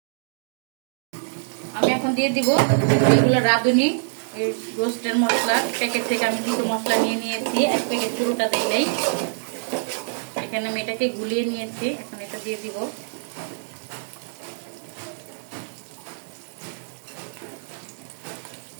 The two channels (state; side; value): silent; left; digital silence